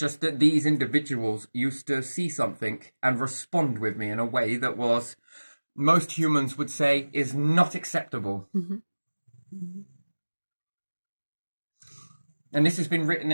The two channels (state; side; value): inverted; both; correlation -1.00